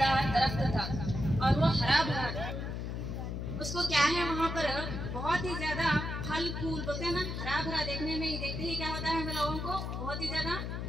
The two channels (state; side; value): noise; left; hum, 4 dB below the sound